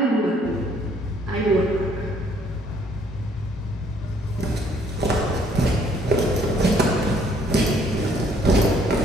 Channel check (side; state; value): both; normal; correlation 0.64